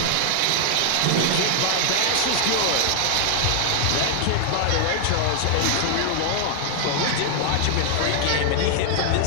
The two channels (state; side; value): different; both; correlation 0.00